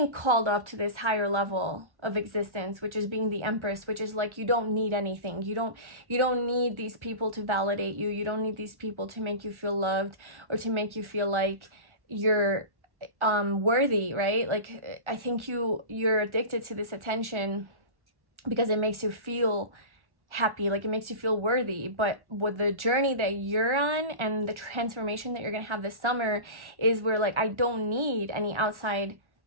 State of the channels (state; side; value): late; left; 1.4 ms